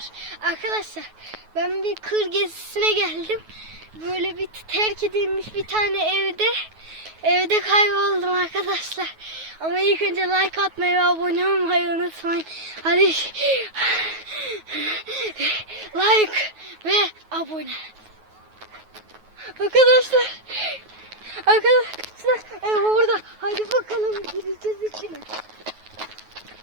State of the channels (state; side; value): late; left; 9.3 ms